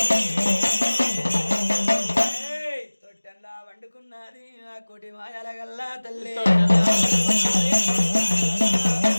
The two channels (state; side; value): inverted; both; correlation -1.00